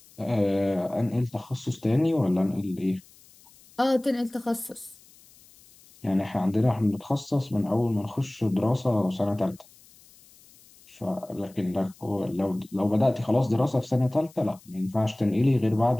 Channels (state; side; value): noise; left; hiss, 26 dB below the sound